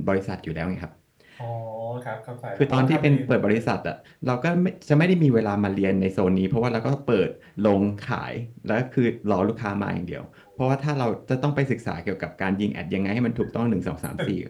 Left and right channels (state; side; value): identical; both; correlation 1.00